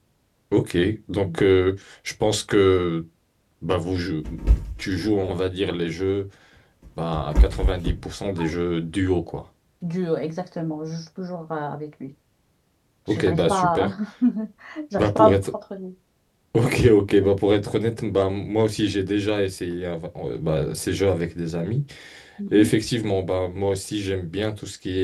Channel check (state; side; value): identical; both; correlation 1.00